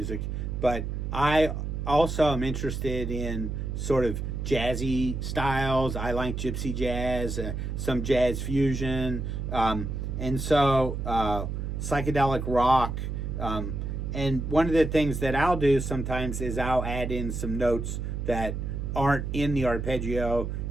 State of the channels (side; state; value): right; noise; hum, 3 dB below the sound